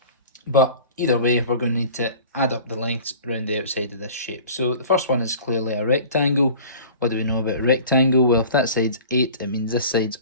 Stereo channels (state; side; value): inverted; both; correlation -0.42